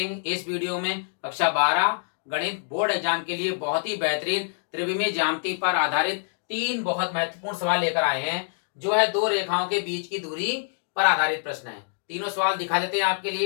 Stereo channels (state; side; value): silent; right; digital silence